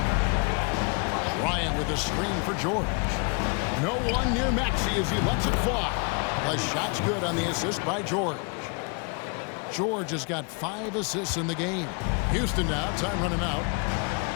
Ryan with a screen for George. No one near Maxey as he lets it fly. The shot's good on the assist by George. George has got 5 assists in the game. Houston now, time running out.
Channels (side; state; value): right; quieter; 35.0 dB